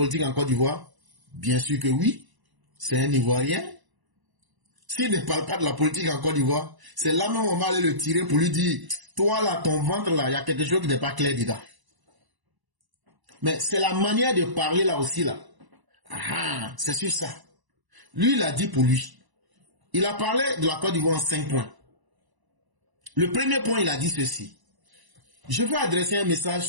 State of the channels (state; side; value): late; left; 1.0 ms